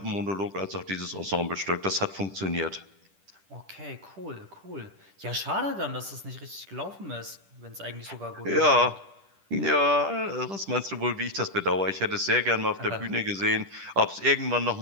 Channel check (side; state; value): left; late; 10 ms